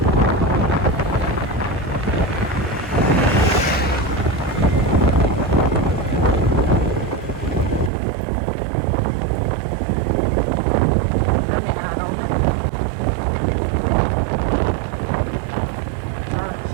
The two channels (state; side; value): drops out; left; at 7.9 s